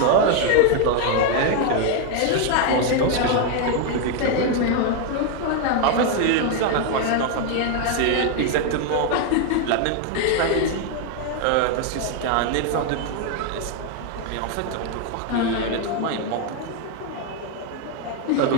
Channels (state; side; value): different; both; correlation 0.00